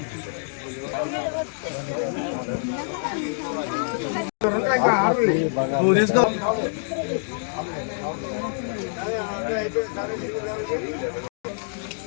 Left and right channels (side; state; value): right; silent; digital silence